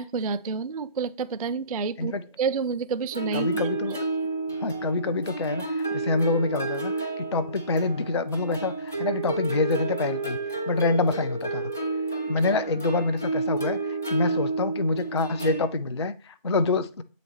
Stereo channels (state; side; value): inverted; both; correlation -0.46